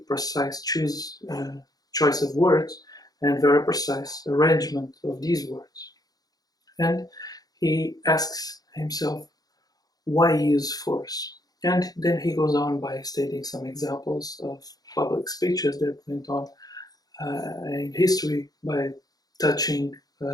precise choice of words and very precise arrangement of these words. And he asks himself, why use force? And then he goes on by stating some examples of public speeches that went on in history by touching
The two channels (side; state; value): right; late; 0.18 ms